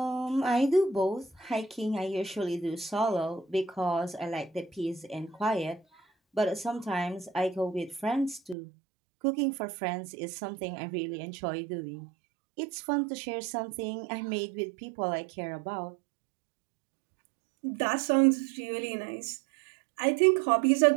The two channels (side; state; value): left; drops out; at 8.6 s